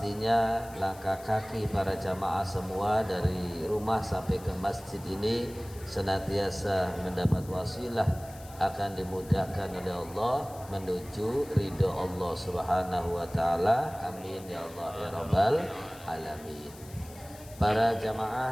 langkah kaki para jamaah semua dari rumah sampai ke masjid ini senantiasa mendapat wasilah akan dimudahkan oleh Allah menuju ridho Allah Subhanahu wa Ta'ala. Amin ya Allah ya Rabbal alamin. Para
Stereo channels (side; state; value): left; noise; hiss, 20 dB below the sound